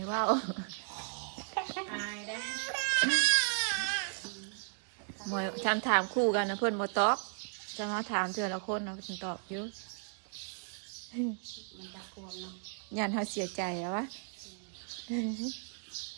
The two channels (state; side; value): silent; left; 54 dB below the other